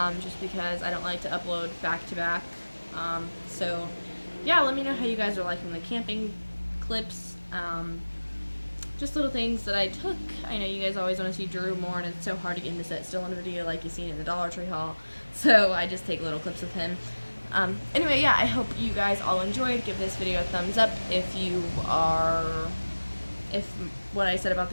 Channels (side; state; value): both; inverted; correlation -1.00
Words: because I don't like to upload back to back. So yeah, let me know how you guys are liking the camping clips, just little things that I took. I know you guys always want to see Drew more, and it's so hard to get him to sit still in a video like you've seen in the Dollar Tree haul, so I just take little clips of him. Anyway, yeah, I hope you guys all enjoyed. Give this video a thumbs up if what I said about